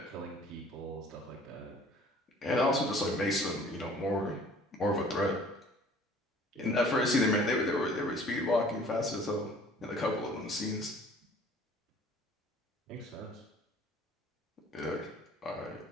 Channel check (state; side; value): normal; both; correlation 0.52